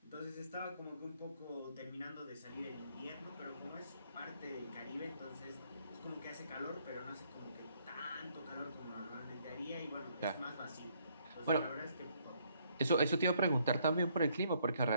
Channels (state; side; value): inverted; both; correlation -0.68